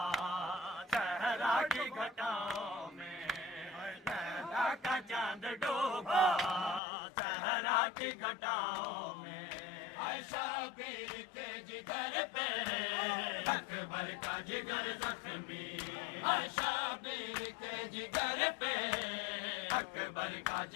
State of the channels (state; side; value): drops out; right; at 6.8 s